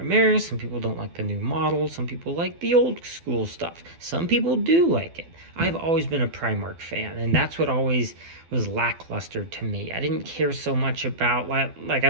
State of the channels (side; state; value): left; late; 12 ms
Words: some people don't like the new model, some people like the old school stuff. Some people do like it. I've always been a Primarch fan, and that's what always was lackluster to me. I didn't care so much about, like I